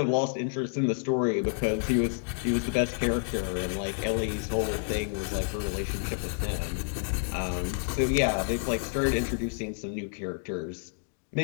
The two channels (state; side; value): silent; right; 55 dB below the other